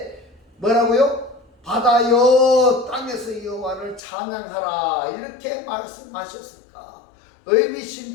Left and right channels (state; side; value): drops out; right; at 4.0 s